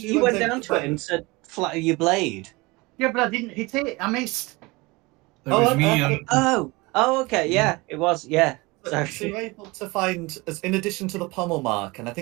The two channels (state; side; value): quieter; left; 23.9 dB